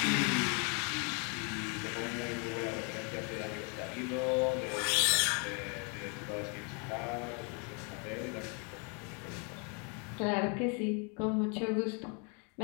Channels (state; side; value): quieter; right; 36.1 dB